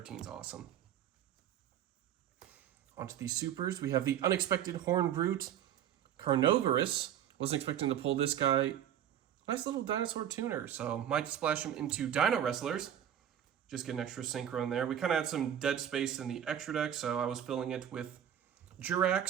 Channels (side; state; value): left; quieter; 10.1 dB